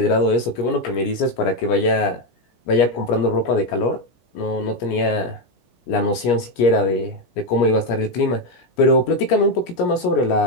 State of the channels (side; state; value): right; late; 17 ms